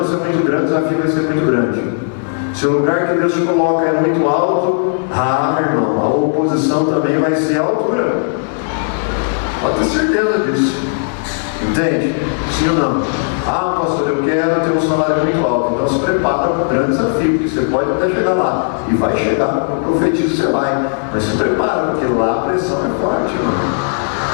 é muito grande, o desafio vai ser muito grande. Se o lugar que Deus te coloca é muito alto, irmão, a oposição também vai ser a altura. Pode ter certeza disso. Entende? Sim ou não? Pastor, eu quero ter um salário muito alto. Então se prepara para um grande desafio, porque você pode até chegar lá. E vai chegar, eu profetizo que você vai. Mas se prepara, porque lá a pressão é forte, irmão.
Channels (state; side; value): silent; right; digital silence